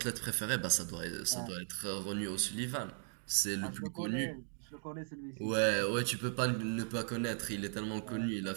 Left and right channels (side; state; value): left; silent; 53 dB below the other